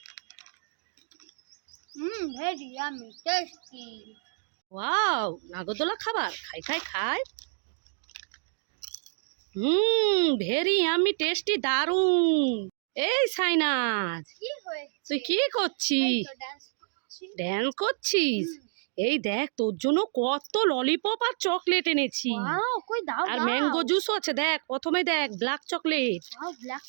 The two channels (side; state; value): left; silent; digital silence